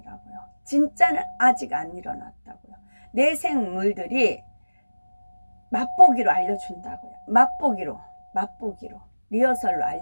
진짜는 아직 안 일어났다고요. 내생물들이 맛보기로 알려준다고요. 맛보기로 리허설로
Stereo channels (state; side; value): inverted; both; correlation -1.00